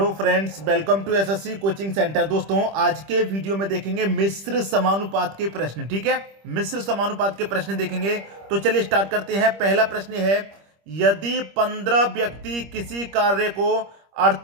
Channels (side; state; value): left; late; 25 ms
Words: friends, welcome to SSC coaching centre. दोस्तों, आज के वीडियो में देखेंगे मिश्र समानुपात के प्रश्न। ठीक है, मिश्र समानुपात के प्रश्न देखेंगे। तो चलिए स्टार्ट करते हैं। पहला प्रश्न है, यदि 15 व्यक्ति किसी कार्य को